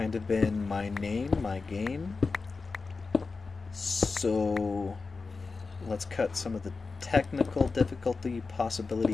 of been my game. So let's cut some of the technical difficulty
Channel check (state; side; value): quieter; right; 4.3 dB